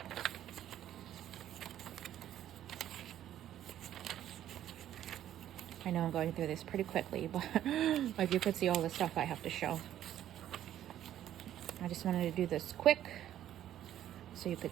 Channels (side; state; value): left; quieter; 11.6 dB